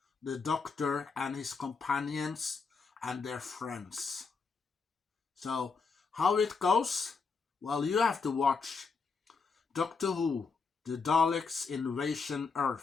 the Doctor and his companions and their friends. So, how it goes? Well, you have to watch Doctor Who, The Daleks Invasion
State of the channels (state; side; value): quieter; right; 4.8 dB